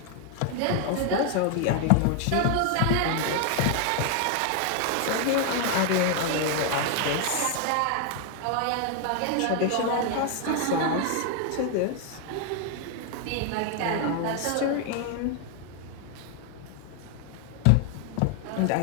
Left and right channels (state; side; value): different; both; correlation 0.00